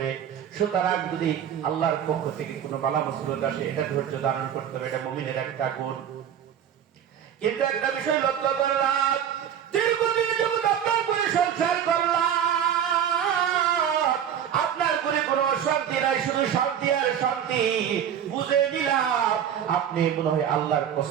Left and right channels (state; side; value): quieter; left; 9.2 dB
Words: সুতরাং যদি আল্লাহর পক্ষ থেকে কোনো বালা মুসিবত আসে, এটা ধৈর্য ধারণ করতে হবে, এটা মুমিনের একটা গুণ। কিন্তু একটা বিষয় লক্ষ্য করলাম, দীর্ঘদিন যখন আপনার করে সংসার করলাম, আপনার করে কোনো অশান্তি নাই, শুধু শান্তি আর শান্তি। বুঝে নিলাম আপনি মনে হয় আল্লাহর